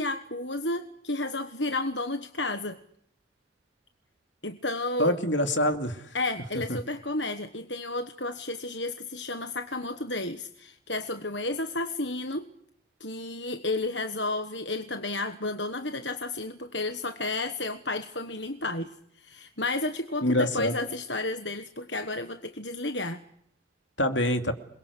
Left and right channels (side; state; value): both; normal; correlation -0.01